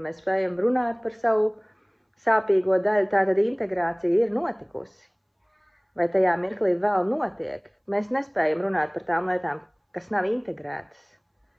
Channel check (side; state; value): both; identical; correlation 1.00